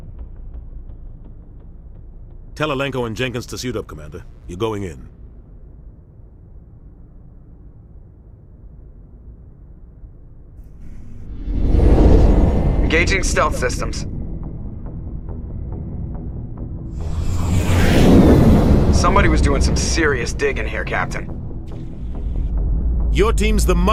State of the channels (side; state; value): both; identical; correlation 1.00